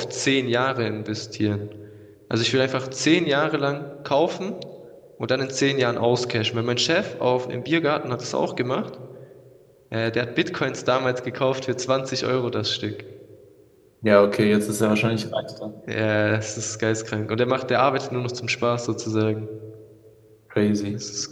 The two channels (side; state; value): both; identical; correlation 1.00